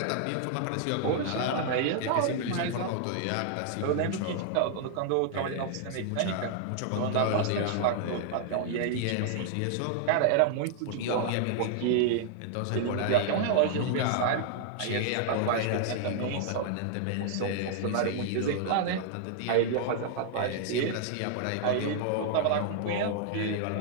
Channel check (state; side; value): different; both; correlation -0.01